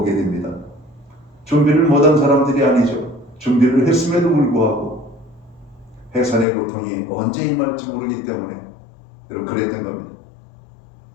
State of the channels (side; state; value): right; drops out; at 6.5 s